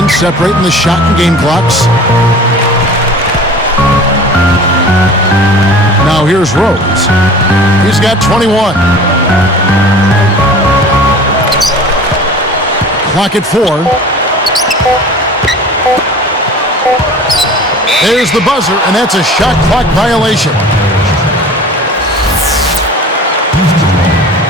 separating the shot and game clocks. Now here's Rose. He's got 21. Clock at 4. There's the buzzer, and that's a shot clock violation.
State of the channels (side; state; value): both; normal; correlation 0.42